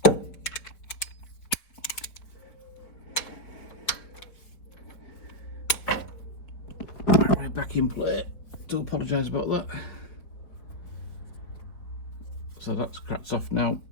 Right, back in play. Do apologise about that. So that's cracked off now.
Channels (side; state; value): right; late; 4.8 ms